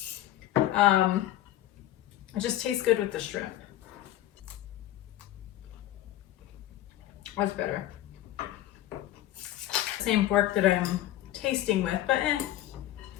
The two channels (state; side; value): quieter; right; 13.7 dB